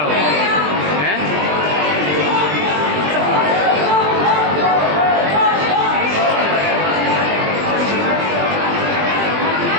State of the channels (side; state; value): left; late; 20 ms